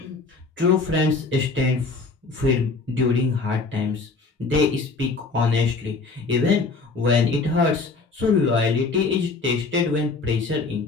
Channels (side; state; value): right; quieter; 4.0 dB